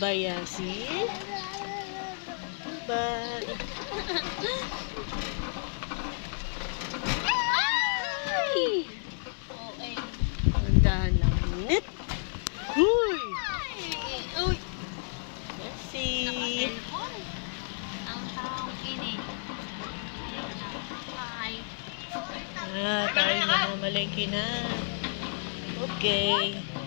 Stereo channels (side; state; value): right; silent; 57 dB below the other